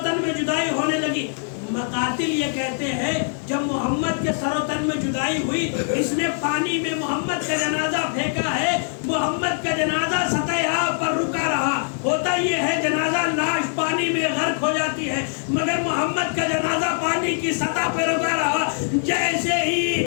تن میں جدائی ہونے لگی۔ مقاتل یہ کہتے ہیں جب محمد کے سر و تن میں جدائی ہوئی، اس نے پانی میں محمد کا جنازہ پھینکا ہے، محمد کا جنازہ سطح آب پر رکا رہا۔ ہوتا یہ ہے جنازہ لاش پانی میں غرق ہو جاتی ہے، مگر محمد کا جنازہ پانی کی سطح پہ رکا رہا۔ جیسے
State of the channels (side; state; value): right; silent; 63 dB below the other